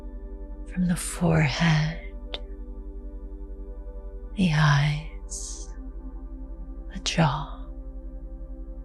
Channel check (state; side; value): identical; both; correlation 1.00